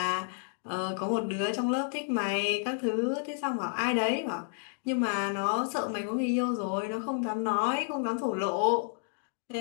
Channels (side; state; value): right; silent; digital silence